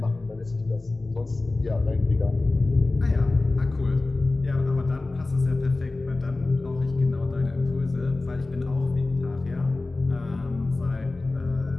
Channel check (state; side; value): quieter; right; 3.2 dB